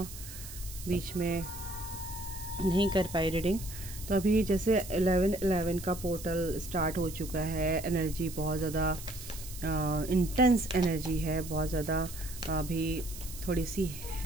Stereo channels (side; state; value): right; noise; hiss, 13 dB below the sound